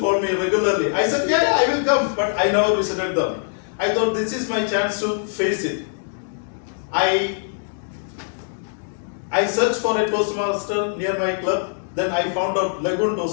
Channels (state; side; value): silent; right; digital silence